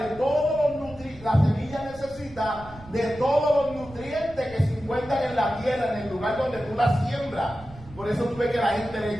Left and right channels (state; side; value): noise; right; rumble, 19 dB below the sound